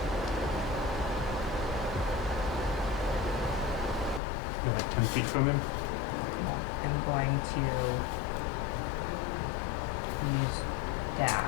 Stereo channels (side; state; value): right; drops out; at 4.2 s